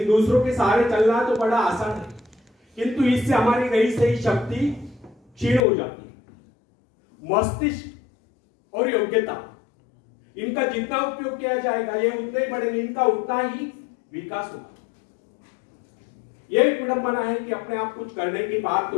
दूसरों के सहारे चलना तो बड़ा आसान है, किंतु इससे हमारी रही सही शक्ति क्षीण हो जाती है। मस्तिष्क और योग्यता, इनका जितना उपयोग किया जाएगा ये उतने ही बढ़ेंगे, इनका उतना ही विकास होगा। यह एक विडंबना है कि अपने आप कुछ करने की बात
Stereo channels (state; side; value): drops out; right; at 5.7 s